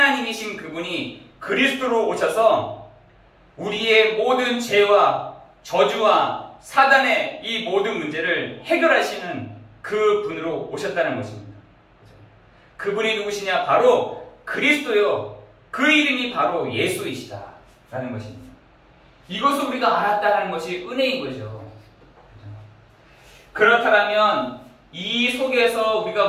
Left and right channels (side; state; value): both; identical; correlation 1.00